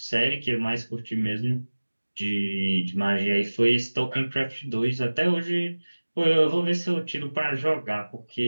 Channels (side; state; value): both; inverted; correlation -1.00